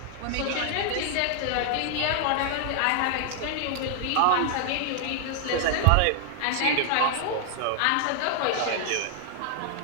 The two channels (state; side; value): different; both; correlation 0.00